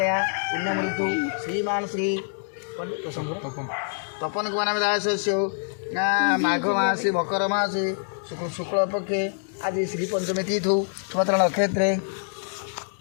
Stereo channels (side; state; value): right; silent; digital silence